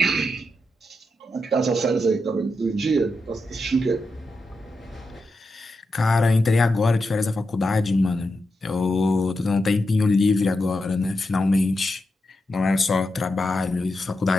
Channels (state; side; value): normal; both; correlation 0.87